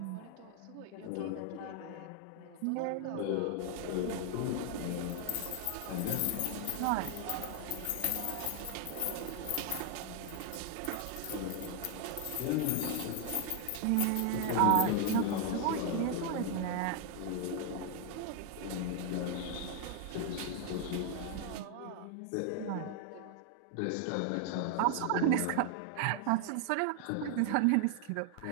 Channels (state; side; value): different; both; correlation 0.00